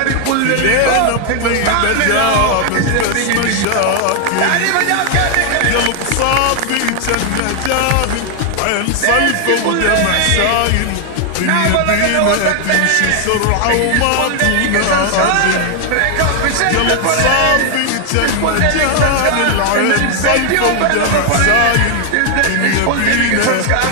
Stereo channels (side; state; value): both; different; correlation 0.00